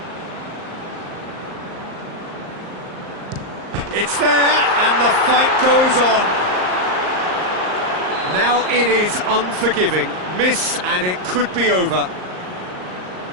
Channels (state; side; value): late; left; 38 ms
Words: It's there, and the fight goes on. Now it is unforgiving. Miss, and it could be over.